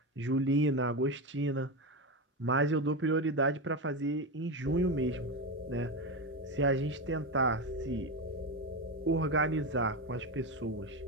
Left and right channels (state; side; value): normal; both; correlation 0.15